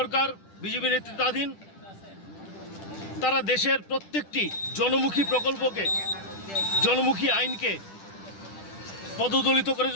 বিজেপি নেতৃত্বাধীন, তারা দেশের প্রত্যেকটি জনমুখী প্রকল্পকে, জনমুখী আইনকে পদদলিত করে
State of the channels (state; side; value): late; right; 10 ms